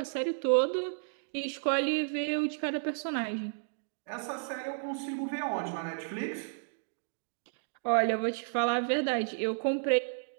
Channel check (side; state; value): left; silent; digital silence